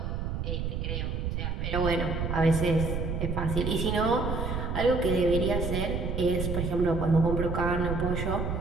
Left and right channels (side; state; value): right; noise; rumble, 2 dB below the sound